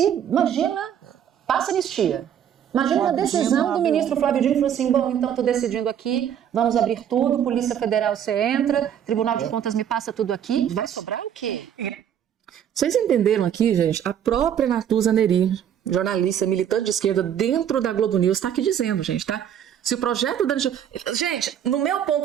Imagina, passa anistia. Imagina a decisão do ministro Flávio Dino, falou assim, bom, então estou decidindo aqui, vamos abrir tudo, Polícia Federal, você entra, Tribunal de Contas me passa tudo aqui. Vai sobrar o quê? Vocês entenderam aqui, gente? A própria Natuza Neri, jornalista, militante de esquerda dentro da Globo News, está aqui dizendo, gente, tá? Se o projeto da... Gente, no meu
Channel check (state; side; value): quieter; left; 9.4 dB